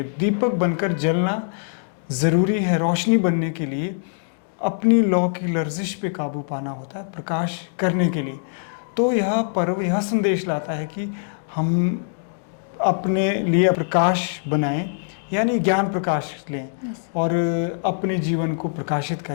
दीपक बनकर जलना ज़रूरी है। रोशनी बनने के लिए अपनी लौ की लर्जिश पे काबू पाना होता है प्रकाश करने के लिए। तो यह पर्व यह संदेश लाता है कि हम अपने लिए प्रकाश बनाएं, यानी ज्ञान प्रकाश लें और अपने जीवन को प्रकाशित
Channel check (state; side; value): silent; right; digital silence